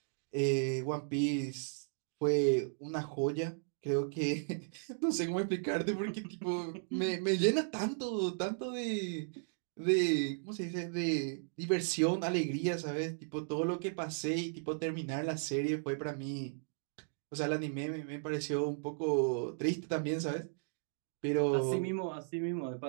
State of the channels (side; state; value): left; silent; digital silence